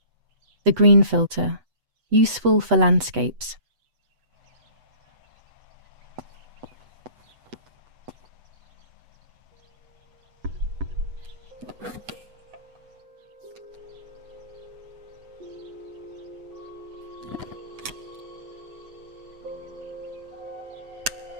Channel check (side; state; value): left; late; 8.0 ms